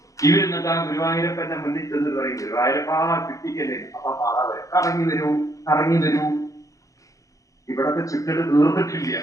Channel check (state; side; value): late; right; 0.16 ms